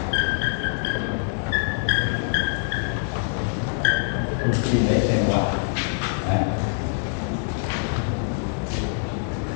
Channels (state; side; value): silent; right; 62 dB below the other